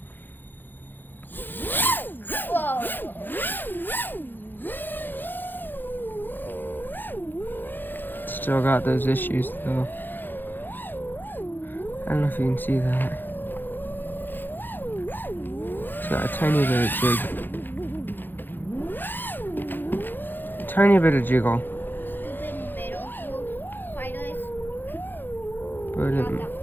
Still got those issues though. I don't know if you can see that. It's got a tiny bit of jig. Tiny bit of jiggle. But it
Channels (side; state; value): right; late; 0.093 ms